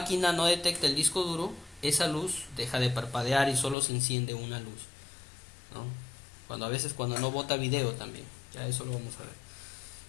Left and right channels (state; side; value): drops out; right; at 3.8 s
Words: no detecta el disco duro, esa luz deja de parpadear y solo se enciende una luz, ¿no? Cuando no bota video también, ya eso lo vamos a ver.